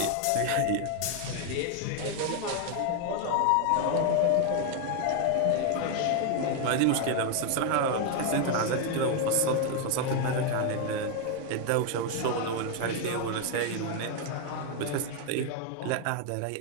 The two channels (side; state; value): both; different; correlation 0.01